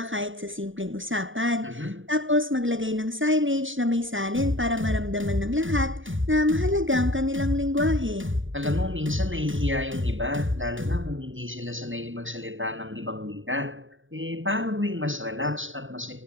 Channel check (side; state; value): left; late; 0.57 ms